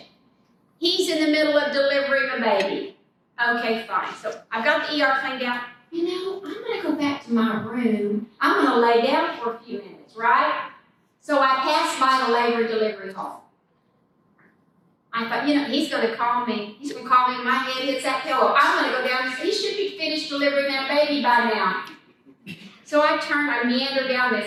He's in the middle of delivering a baby. Okay, fine. So I've got the ER cleaned out. You know, I'm going to go back to my room. I'm going to lay down for a few minutes, right? So I passed by the labor delivery hall. I thought, he's going to call me. He's going to call me, my head hits that pillow. I'm going to go down. He should be finished delivering that baby by now. So I meander down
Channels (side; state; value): both; identical; correlation 1.00